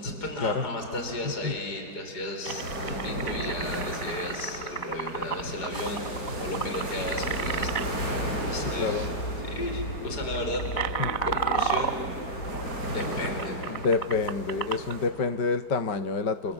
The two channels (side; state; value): right; late; 4.9 ms